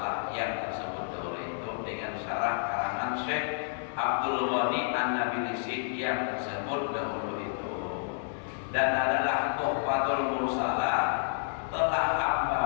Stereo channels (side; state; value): right; silent; digital silence